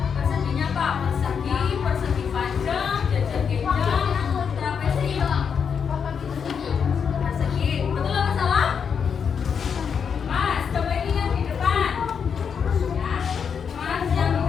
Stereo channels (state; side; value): quieter; right; 6.8 dB